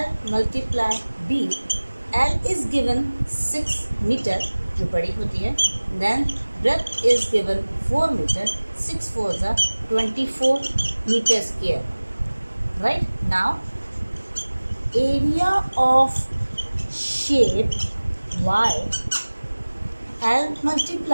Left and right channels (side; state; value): both; inverted; correlation -1.00